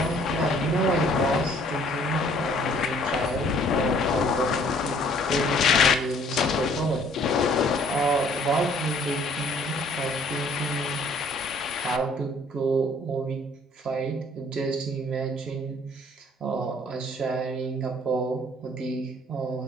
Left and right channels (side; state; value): both; normal; correlation 0.59